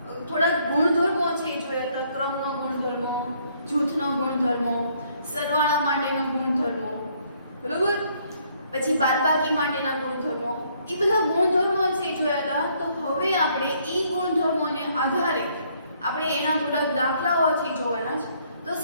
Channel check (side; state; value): both; inverted; correlation -0.67